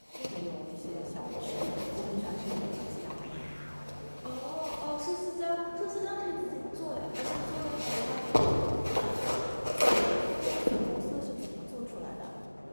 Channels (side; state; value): both; inverted; correlation -1.00